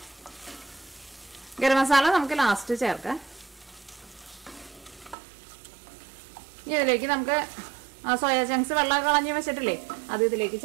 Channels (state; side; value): drops out; left; at 5.2 s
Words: ഗരം മസാല നമുക്ക് ലാസ്റ്റ് ചേർക്കാം. ഇനി ഇതിലേക്ക് നമുക്ക് സോയാ ചങ്ക്സ് വെള്ളം കളഞ്ഞ് വെച്ചിട്ടില്ലേ, അത് ഇതിലേക്ക്